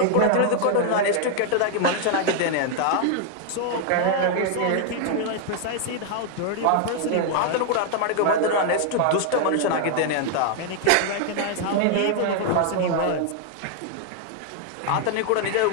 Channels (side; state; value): both; different; correlation 0.00